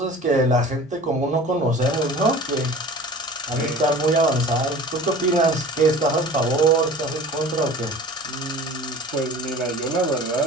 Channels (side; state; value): both; normal; correlation 0.41